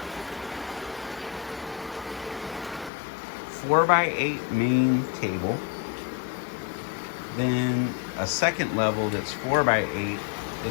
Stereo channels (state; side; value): drops out; right; at 2.9 s